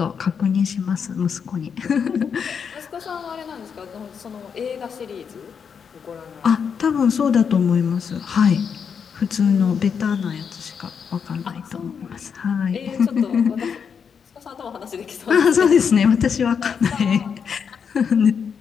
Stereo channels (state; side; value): quieter; right; 6.7 dB